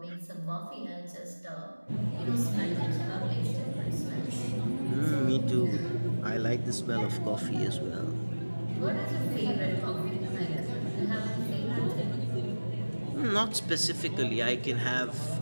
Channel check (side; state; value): both; inverted; correlation -1.00